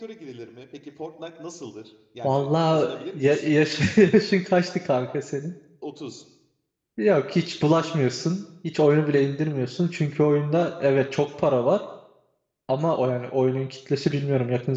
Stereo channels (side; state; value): both; identical; correlation 1.00